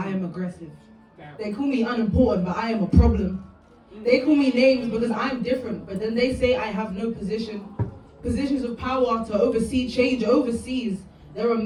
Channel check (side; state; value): both; identical; correlation 1.00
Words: am aggressive. They call me unimportant, but I am a problem. They call me names because I'm different, but then they say I have no position. Positions of power to oversee change overseas. There are